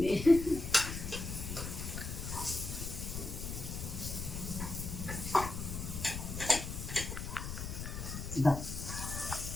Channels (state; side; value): noise; left; rumble, 6 dB below the sound